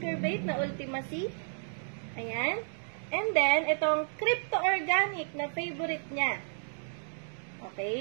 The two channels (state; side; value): silent; left; digital silence